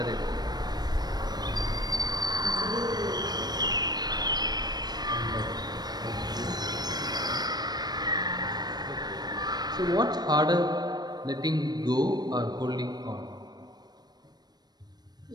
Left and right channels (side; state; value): left; late; 0.19 ms